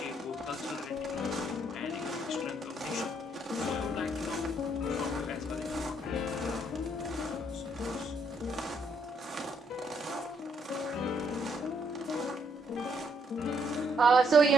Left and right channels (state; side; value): normal; both; correlation 0.72